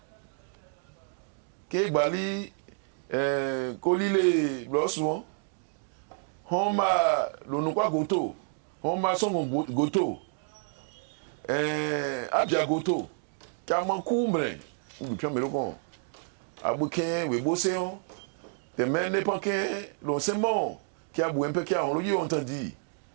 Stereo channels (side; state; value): left; silent; 57 dB below the other